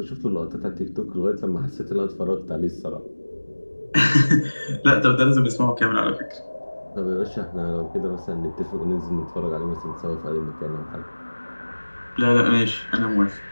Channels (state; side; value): inverted; both; correlation -1.00